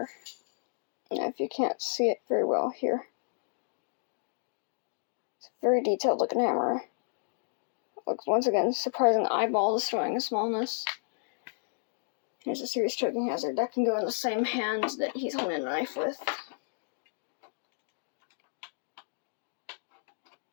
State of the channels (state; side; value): silent; right; digital silence